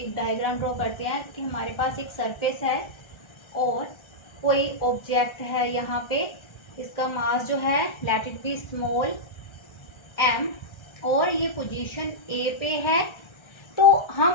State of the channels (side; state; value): right; late; 1.3 ms